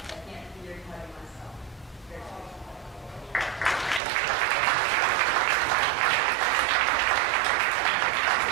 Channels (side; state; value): left; drops out; at 4.0 s